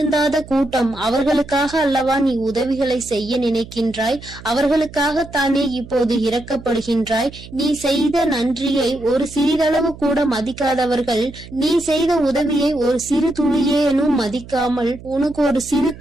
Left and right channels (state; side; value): noise; right; hum, 17 dB below the sound